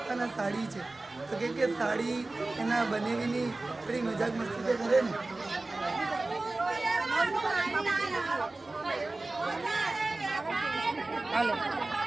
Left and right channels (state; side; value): quieter; left; 3.1 dB